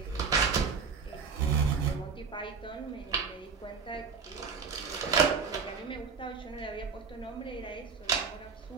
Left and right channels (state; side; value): quieter; left; 5.5 dB